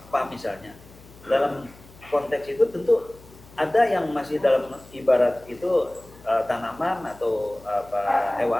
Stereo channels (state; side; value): noise; left; hum, 23 dB below the sound